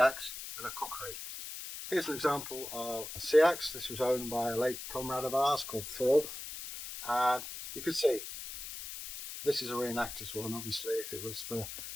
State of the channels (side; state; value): left; noise; hiss, 9 dB below the sound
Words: and a Kukri? Here's an example of a Seax. This was owned by a late comrade of ours called Thorkelsson, and you can see this is a reenactor's one. Obviously, if it was for